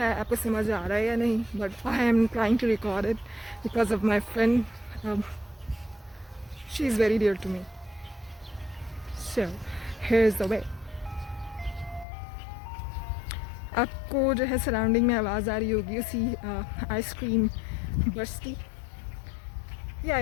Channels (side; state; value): right; drops out; at 12.1 s